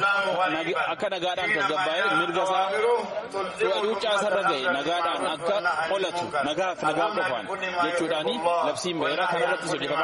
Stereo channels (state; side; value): identical; both; correlation 1.00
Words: akka nagaadhaan tasgabbaa'ee mirga isaa cuucaasarra ga'e nagaadhaan akka qolatu nagaaf nagaa qofaan jechuudhaan labsiin ba'eera kanarrattis